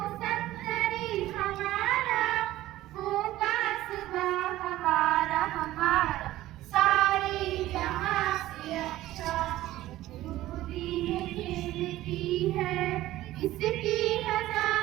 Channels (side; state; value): left; quieter; 15.5 dB